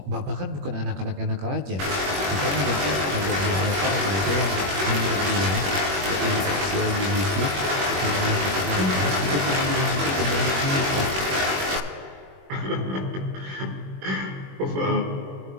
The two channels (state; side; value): late; left; 21 ms